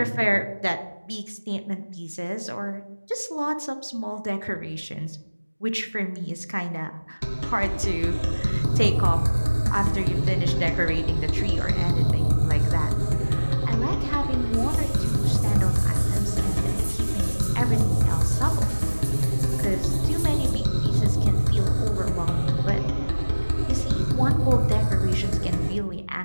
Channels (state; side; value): inverted; both; correlation -1.00